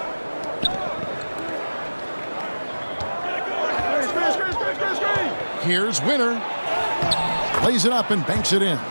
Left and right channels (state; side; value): inverted; both; correlation -1.00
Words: Here's Winter. Lays it up and banks it in.